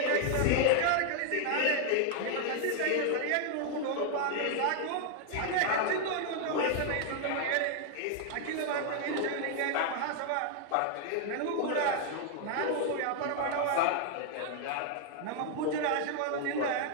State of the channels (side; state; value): both; different; correlation 0.00